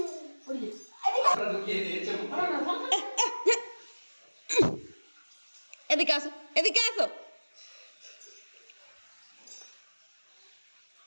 এদিকে আসো, এদিকে আসো।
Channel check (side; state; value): both; inverted; correlation -1.00